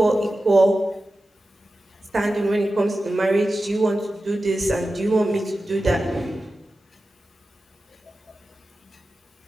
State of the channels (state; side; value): normal; both; correlation 0.93